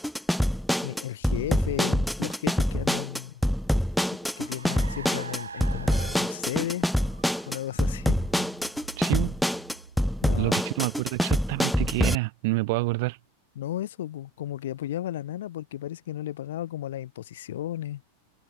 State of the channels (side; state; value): both; normal; correlation 0.65